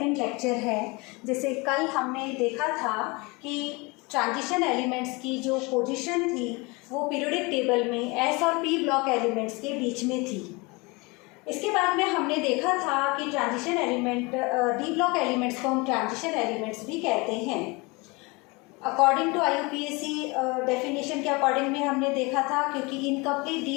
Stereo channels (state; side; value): quieter; right; 26.4 dB